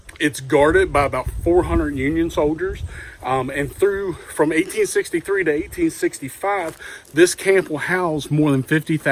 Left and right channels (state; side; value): identical; both; correlation 1.00